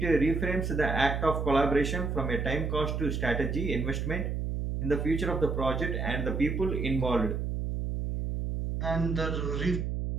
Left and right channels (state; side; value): noise; right; hum, 2 dB below the sound